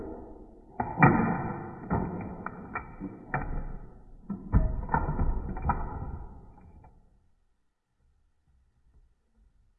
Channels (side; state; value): both; identical; correlation 1.00